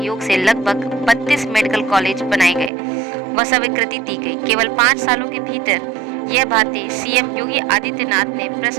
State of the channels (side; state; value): left; drops out; at 2.7 s